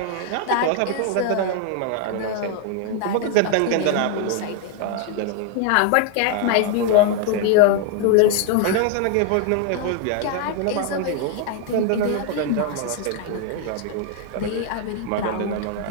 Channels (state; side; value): different; both; correlation 0.00